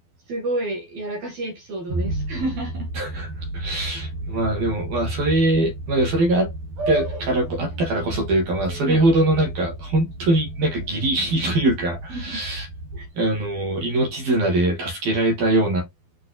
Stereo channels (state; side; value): late; left; 12 ms